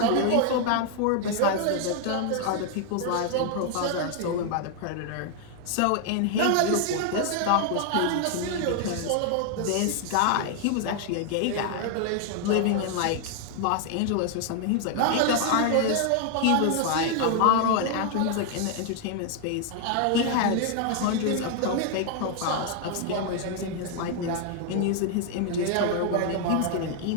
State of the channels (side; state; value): both; different; correlation 0.00